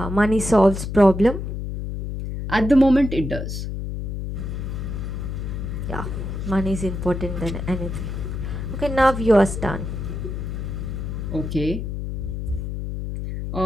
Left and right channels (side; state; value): left; noise; hum, 5 dB below the sound